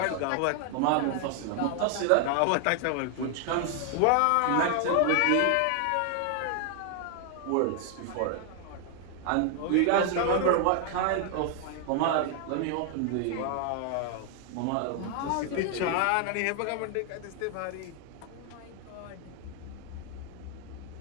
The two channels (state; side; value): different; both; correlation 0.00